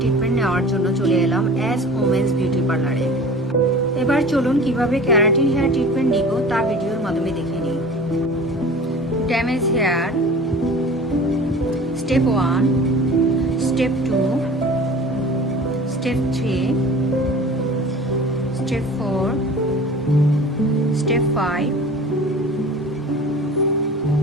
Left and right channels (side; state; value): both; normal; correlation 0.40